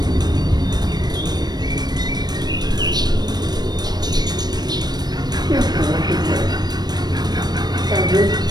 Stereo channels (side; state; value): left; late; 0.19 ms